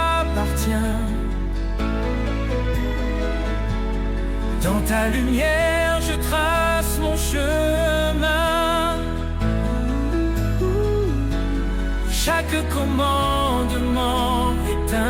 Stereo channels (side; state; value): both; identical; correlation 1.00